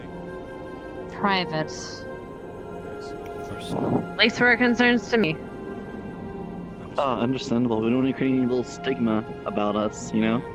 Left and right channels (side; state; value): both; identical; correlation 1.00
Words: Private. At least where it concerns to me. Understandable. We don't want to create any little stigma about us, you know?